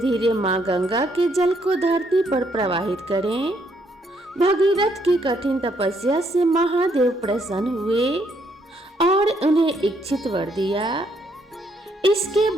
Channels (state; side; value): normal; both; correlation 0.72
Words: माँ गंगा के जल को धरती पर प्रवाहित करें। भागीरथ की कठिन तपस्या से महादेव प्रसन्न हुए और उन्हें इच्छित वर दिया। इसके